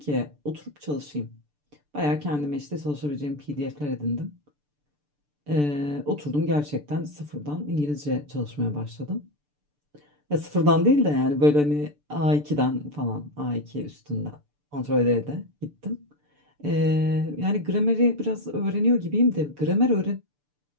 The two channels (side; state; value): left; late; 6.8 ms